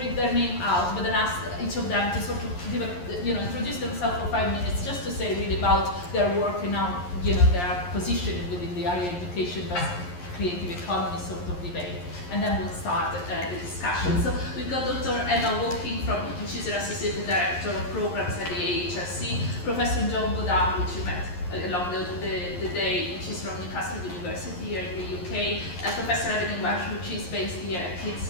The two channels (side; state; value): right; late; 11 ms